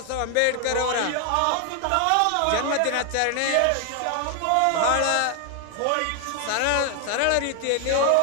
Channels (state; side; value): different; both; correlation 0.00